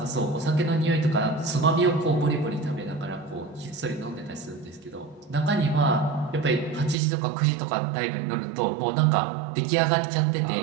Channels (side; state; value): left; drops out; at 7.0 s